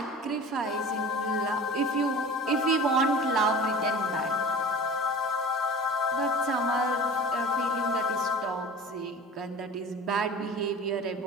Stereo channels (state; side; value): normal; both; correlation 0.38